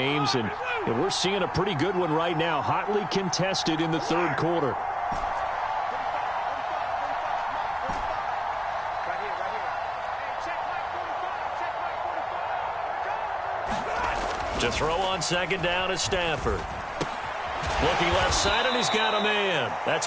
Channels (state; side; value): identical; both; correlation 1.00